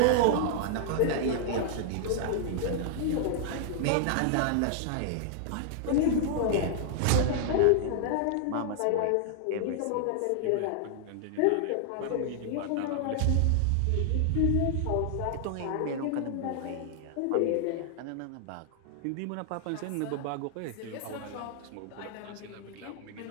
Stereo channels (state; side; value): different; both; correlation -0.01